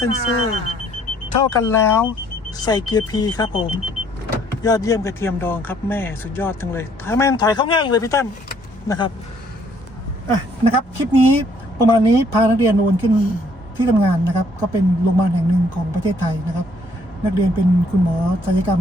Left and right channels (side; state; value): both; normal; correlation 0.64